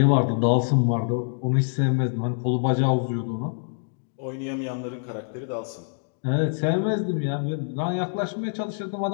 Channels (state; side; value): silent; right; 61 dB below the other